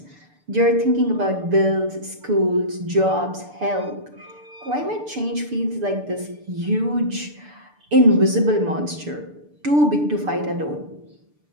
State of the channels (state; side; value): late; left; 6.8 ms